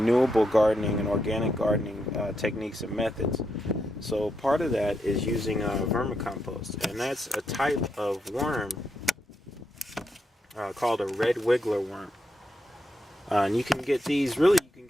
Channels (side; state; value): both; normal; correlation 0.82